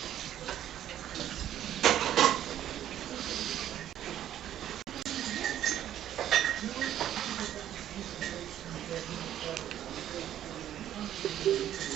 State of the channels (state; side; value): quieter; left; 11.4 dB